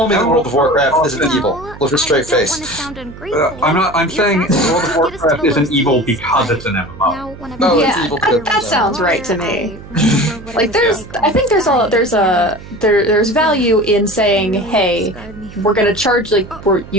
me the World of Warcraft isn't evil with a straight face. I'm saying World of Warcraft isn't evil because it's an MMO. No, yeah, it's evil. that sounds right to me. Like I think there's value in saying, hey, we're gonna charge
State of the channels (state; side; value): noise; right; hum, 16 dB below the sound